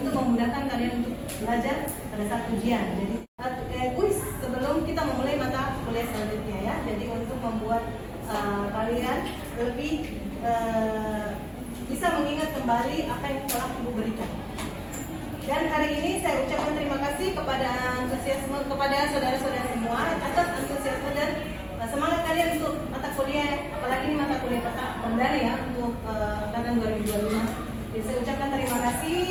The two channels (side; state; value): both; identical; correlation 1.00